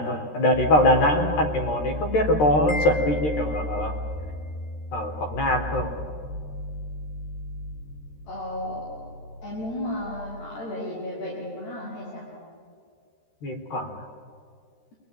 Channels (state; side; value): late; right; 13 ms